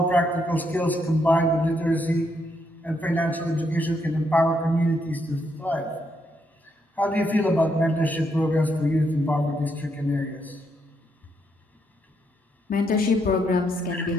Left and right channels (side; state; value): both; normal; correlation 0.77